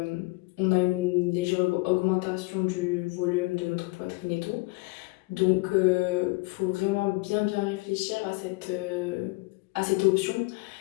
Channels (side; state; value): right; quieter; 24.5 dB